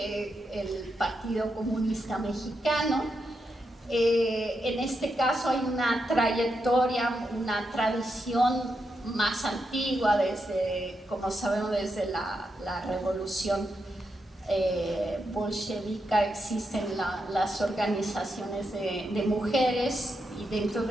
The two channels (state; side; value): normal; both; correlation 0.84